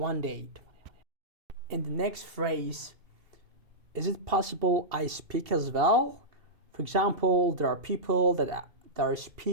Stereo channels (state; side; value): late; left; 2.7 ms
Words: day. In the next phrase, is it possible I speak as well? For example, there are people that are